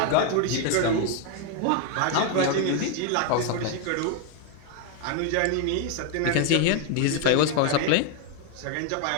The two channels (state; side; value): different; both; correlation 0.01